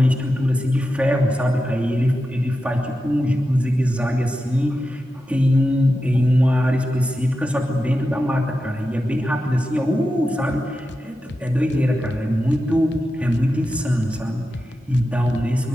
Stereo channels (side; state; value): both; normal; correlation 0.90